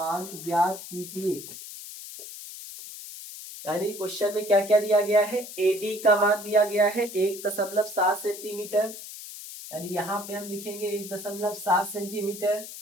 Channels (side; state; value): left; noise; hiss, 12 dB below the sound